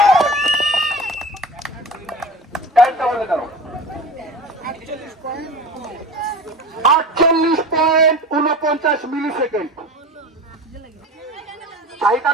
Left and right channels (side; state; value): both; normal; correlation 0.34